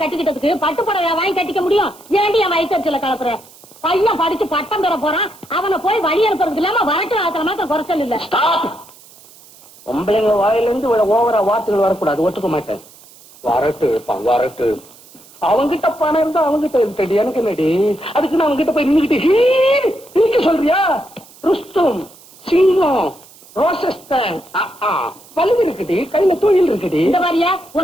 கட்டிக்கிட்டதுக்கு பட்டு புடவை வாங்கி கட்டிக்க முடியும்? ஏண்டி என் வயிற்றுல கலப்புற? பையன் படிச்சு பட்டம் பெற போறான், அவனை போய் வழி அனுப்புறதுக்கு இல்லாம வரட்டு ஆக்கிற மாத்திரம் குறைச்சல் இல்ல. பொம்பளைங்க வாயிலிருந்து ஓவரா வார்த்தைகள் வரக்கூடாது, ஒத்துக்க மாட்டேன். வரட்டு வரட்டு. அவங்கிட்ட பணம் இருந்தா அவங்கிட்ட இருக்கடி, எனக்கு என்னடி? அதுக்கு நான் அவங்கிட்ட போய் நின்னுக்கிட்டு சொல்றியா? ருஸ்தும், சிங்கம், ரோசஸ்தான் பல்லு இருக்குடி, கையில தொழில் இருக்குடி. இந்த மாதிரியா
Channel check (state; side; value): noise; right; hiss, 24 dB below the sound